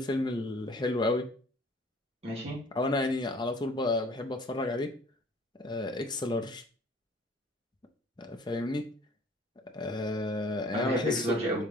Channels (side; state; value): both; normal; correlation 0.52